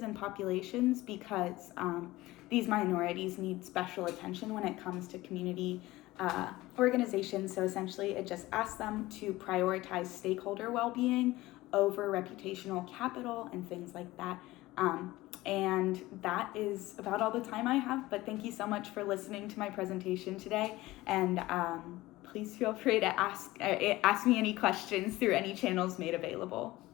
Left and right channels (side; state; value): right; quieter; 18.3 dB